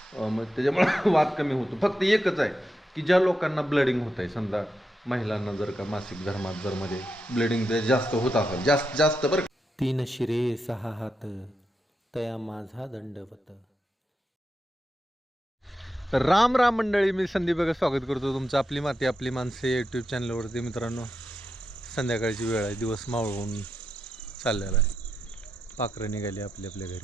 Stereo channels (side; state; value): both; normal; correlation 0.85